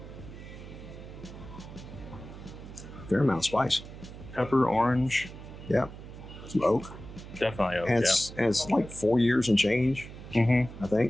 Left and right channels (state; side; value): noise; right; hum, 14 dB below the sound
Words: Fair amount of spice. Pepper, orange, Yeah. Some oak. definitely oak. And it's like 4 years and change, Mm-hmm. I